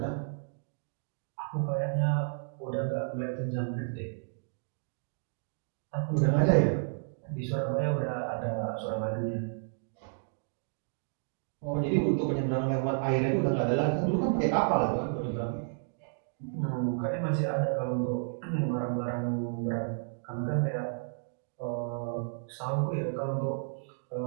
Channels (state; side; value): silent; left; digital silence